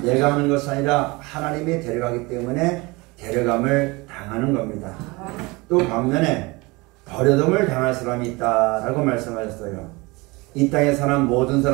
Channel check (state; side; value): quieter; left; 24.5 dB